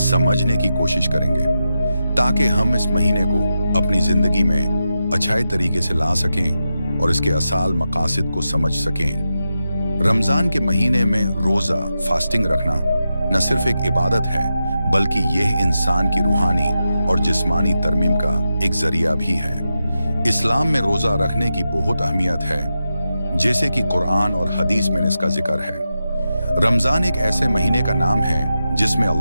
की कोशिश करेंगे, ताकि हम इस महीने को अपनी ज़िंदगी में अच्छे तरीके से ला सकें और इसके असल मकासद को समझ सकें। रमज़ान के महीने में रोज़ा फास्टिंग रखना न सिर्फ एक इबादत है, बल्कि यह इंसान की रूहानी और जिस्मानी तरमीम का एक ज़रिया भी है। इस्लाम में रोज़ा रखने की बहुत अहमियत है, जैसे कि कुरान और हदीस में इसका जिक्र है। रमज़ान एक ऐसे महीने का नाम है जिसमें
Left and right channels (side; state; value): both; inverted; correlation -0.89